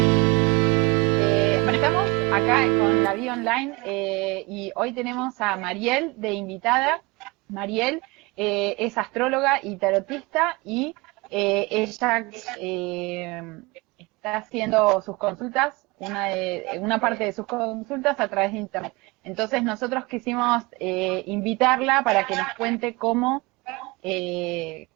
Estamos acá con La Vida Online y hoy tenemos a Mariel de invitada. Mariel es astróloga y tarotista y ella está haciendo sus consultas, una parte de sus consultas a través de internet. Entonces nosotros quisimos invitarla para que nos cuente cómo desarrolla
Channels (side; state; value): left; quieter; 25.2 dB